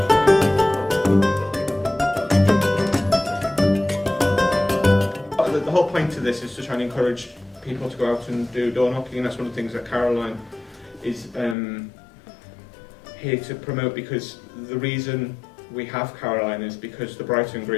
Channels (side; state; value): right; drops out; at 11.6 s